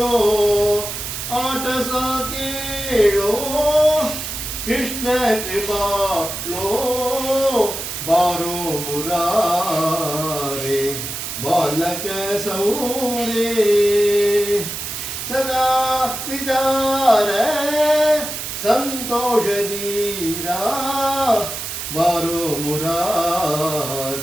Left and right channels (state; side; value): noise; right; hiss, 6 dB below the sound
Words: ಆಟ ಸಾಕೇಳೋ ಕೃಷ್ಣ ಕೃಪಾಳೋ ಬಾರೋ ಮುರಾರೆ ಬಾಲಕ ಸೌರೇ सदा विचार संतोष दीरा बारो